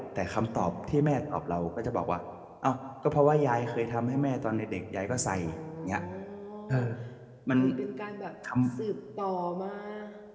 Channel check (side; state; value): both; identical; correlation 1.00